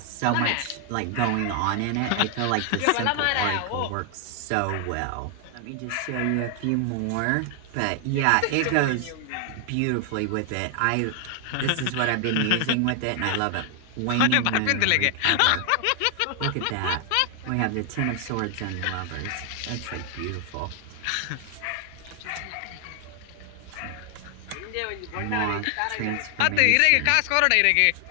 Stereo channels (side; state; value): both; different; correlation 0.00